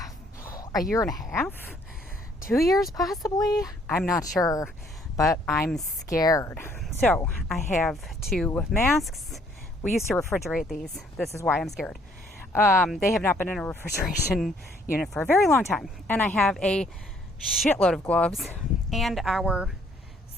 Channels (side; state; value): both; normal; correlation 0.64